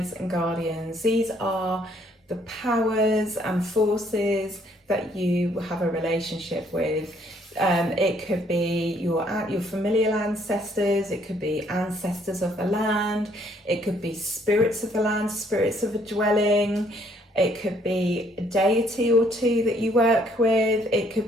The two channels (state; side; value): normal; both; correlation 0.65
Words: and guardians. These are the powers and forces that you have a relationship with. It could be your familial ancestors, it could be ancestors of the land, it could be spirits of the land, spirits of a dwelling, it could be a deity or two that you work with, it